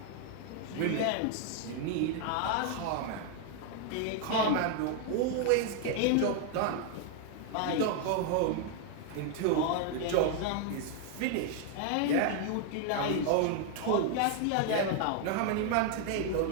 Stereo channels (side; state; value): both; different; correlation 0.00